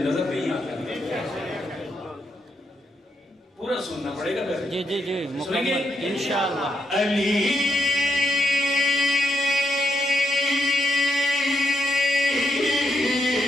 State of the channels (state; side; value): normal; both; correlation 0.79